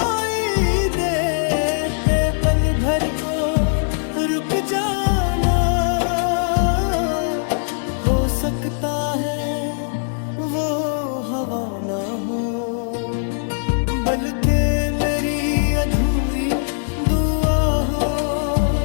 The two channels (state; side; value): silent; right; 65 dB below the other